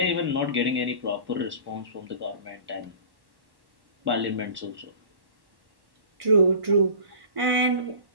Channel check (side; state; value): left; late; 1.1 ms